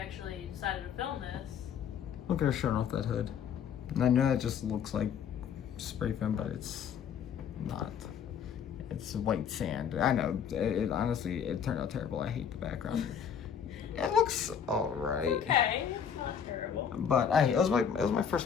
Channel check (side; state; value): right; quieter; 7.8 dB